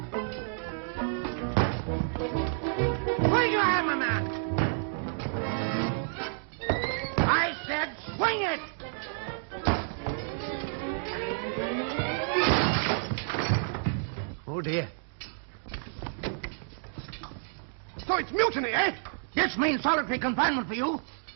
Swing your hammer, man. I said swing it. Oh, dear. So it's mutiny, eh? This means solitary confinement for you.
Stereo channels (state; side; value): silent; left; digital silence